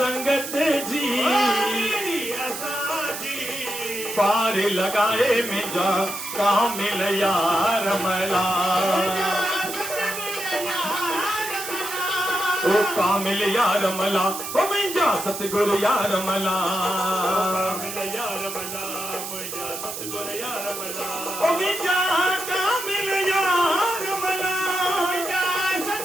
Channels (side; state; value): right; noise; hiss, 7 dB below the sound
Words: जी पार लॻाए मुंहिंजा कामिल यार मला ओ कामिल यार मला ओ मुंहिंजा सतगुरु यार मला ओ मुंहिंजा कामिल यार मला